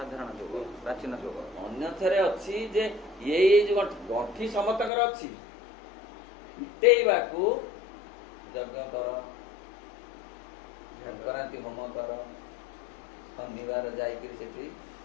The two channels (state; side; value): drops out; right; at 4.9 s